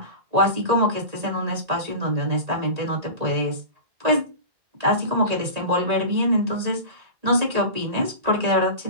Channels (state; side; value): late; left; 1.8 ms